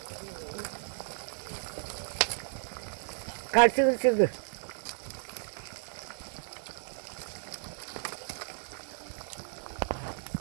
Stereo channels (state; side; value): silent; left; 55 dB below the other